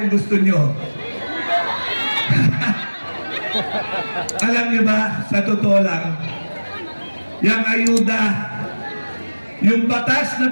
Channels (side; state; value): both; inverted; correlation -1.00